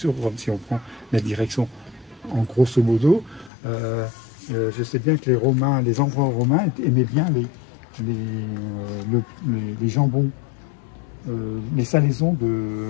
Rome. Si on prend la direction en grosso modo, je sais bien que les empereurs romains aimaient bien les jambons, les salaisons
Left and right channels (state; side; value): drops out; right; at 3.5 s